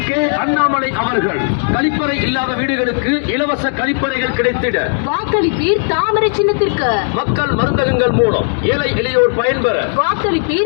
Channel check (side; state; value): right; silent; digital silence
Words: கே அண்ணாமலை அவர்கள். கழிப்பறை இல்லாத வீடுகளுக்கு இலவச கழிப்பறைகள் கிடைத்திட வாக்களிப்பீர் தாமரை சின்னத்திற்கு. மக்கள் மருந்தகங்கள் மூலம் ஏழை எளியோர் பயன்பெற